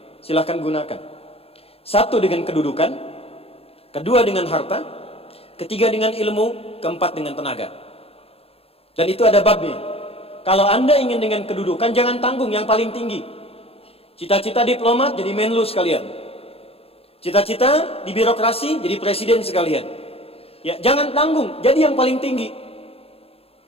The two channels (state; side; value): late; right; 0.28 ms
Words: Silahkan gunakan. 1 dengan kedudukan, 2 dengan harta, 3 dengan ilmu, 4 dengan tenaga. Dan itu ada babnya. Kalau Anda ingin dengan kedudukan, jangan tanggung yang paling tinggi. Cita-cita diplomat jadi menlu sekalian. Cita-cita di birokrasi jadi presiden sekalian. Ya, jangan tanggung, jadi yang paling tinggi.